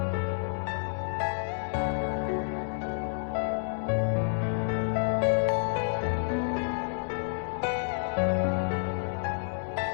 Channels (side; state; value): right; silent; 58 dB below the other